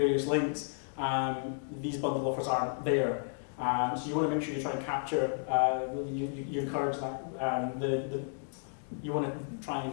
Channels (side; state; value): right; silent; digital silence